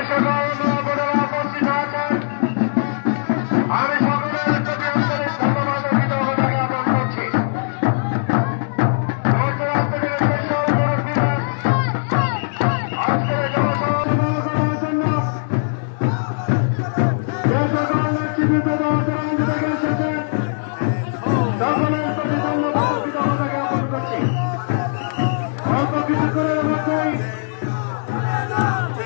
সকল মা বোনেরা উপস্থিত আছেন, আমি সকলের প্রতি আন্তরিক ধন্যবাদ ও কৃতজ্ঞতা জ্ঞাপন করছি। দূর দূরান্ত থেকে যে সকল মুরব্বীরা আজকের জনসভা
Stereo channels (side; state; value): right; silent; digital silence